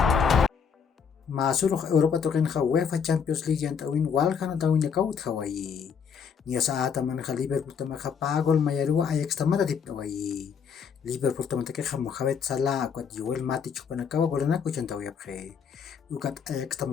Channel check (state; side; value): quieter; right; 6.7 dB